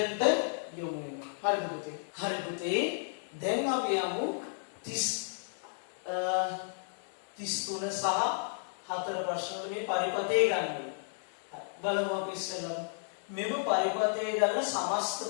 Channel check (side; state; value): right; silent; 56 dB below the other